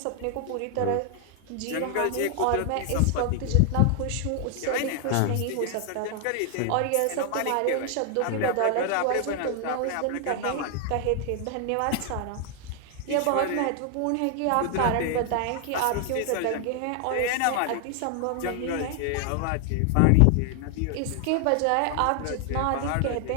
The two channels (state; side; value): different; both; correlation 0.00